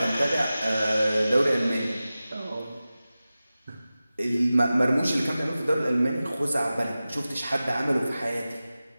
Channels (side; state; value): both; inverted; correlation -0.95